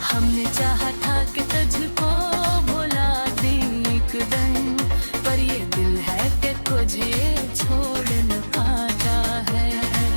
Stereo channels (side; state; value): both; inverted; correlation -1.00